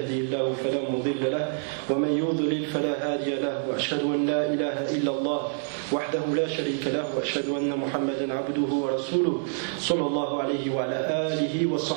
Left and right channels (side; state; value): left; silent; digital silence